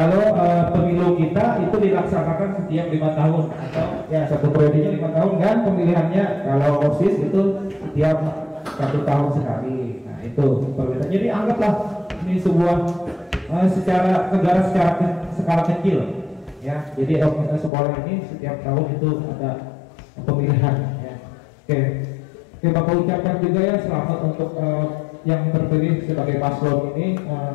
pemilu kita itu dilaksanakan setiap 5 tahun atau ya satu periodenya 5 tahun kan pemilihannya. Kalau OSIS itu setiap 1 tahun sekali. Nah itu perbedaan. Jadi anggaplah ini sebuah secara negara secara skala kecil ya. Jadi sekolah ini setiap tahun itu ada pemilihan ya. Oke, Bapak ucapkan juga ya selamat untuk yang terpilih sebagai paslon ini.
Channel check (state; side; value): drops out; right; at 17.7 s